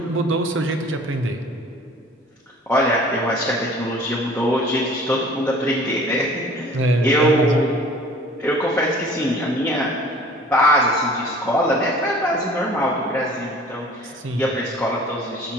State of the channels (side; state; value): both; normal; correlation 0.48